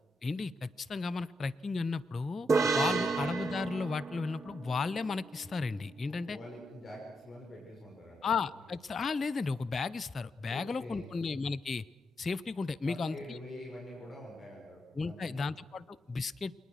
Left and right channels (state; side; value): normal; both; correlation 0.83